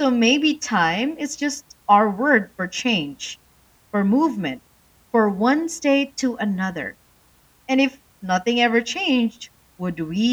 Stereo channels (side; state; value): both; identical; correlation 1.00